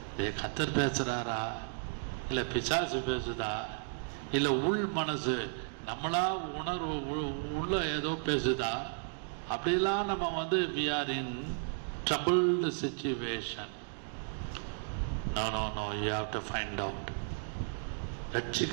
கர்த்தர் பேசுறாரா, இல்ல பிசாசு பேசுதா, இல்ல உள் மனசு நம்மளா உணர்வு உள்ள ஏதோ பேசுதா, அப்படிலாம் நம்ம we are in troubled situation. No, you have to find out.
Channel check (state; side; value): silent; left; digital silence